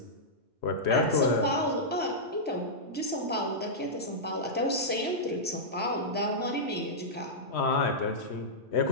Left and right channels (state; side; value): normal; both; correlation -0.11